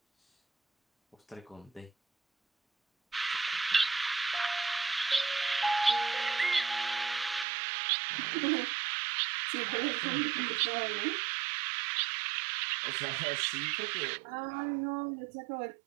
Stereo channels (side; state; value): left; drops out; at 7.5 s